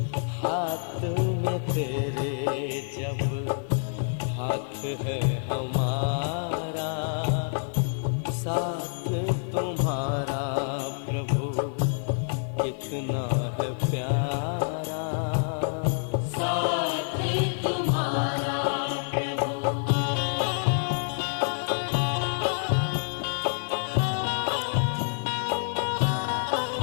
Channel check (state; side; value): silent; right; digital silence